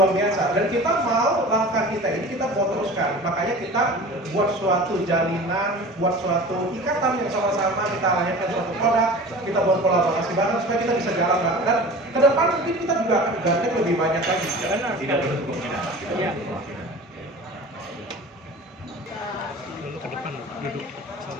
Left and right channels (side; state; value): both; normal; correlation 0.38